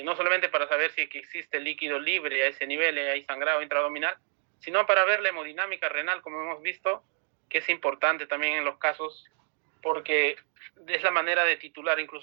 no solamente para saber si existe líquido libre a ese nivel, hay sangrado intraabdominal, sino para ver la hemodinámica renal, como hemos visto, que es importante también en los casos, porque es la manera de titular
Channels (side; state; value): left; silent; 59 dB below the other